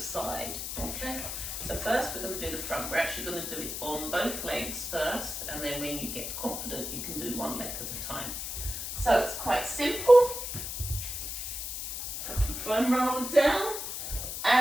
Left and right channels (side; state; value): left; noise; hiss, 5 dB below the sound